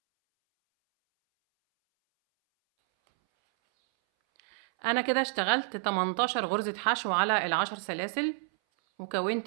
أنا كده اشتغلت 18 غرزة حشو على ال10 سلاسل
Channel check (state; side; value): silent; left; 58 dB below the other